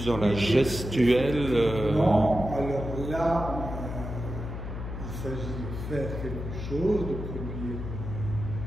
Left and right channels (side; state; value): left; noise; hum, 7 dB below the sound